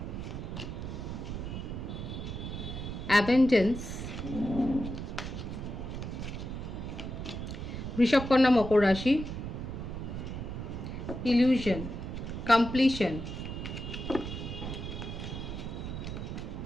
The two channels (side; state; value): right; noise; rumble, 6 dB below the sound